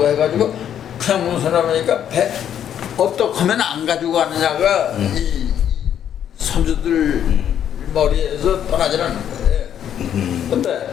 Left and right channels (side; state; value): right; quieter; 9.7 dB